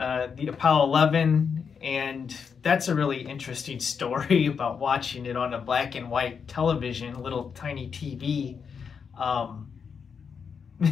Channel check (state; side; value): quieter; right; 6.4 dB